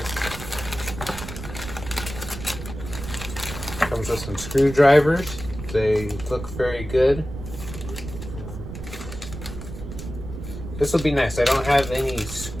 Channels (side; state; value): right; noise; rumble, 10 dB below the sound